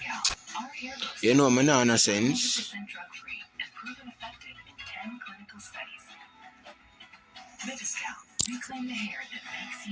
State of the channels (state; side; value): identical; both; correlation 1.00